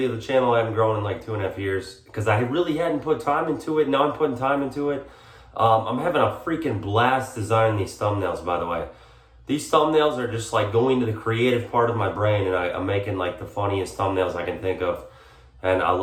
the channel hadn't grown in like 2.5 years because I really hadn't put time into it. Now I'm putting time into it. I'm having a freaking blast designing these thumbnails, by the way. These thumbnails are just like going to the creative part of my brain, and I'm making like the funniest thumbnails I can think of. And I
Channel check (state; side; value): identical; both; correlation 1.00